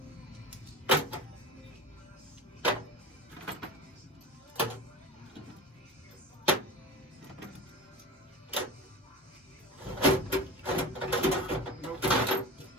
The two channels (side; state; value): both; normal; correlation 0.30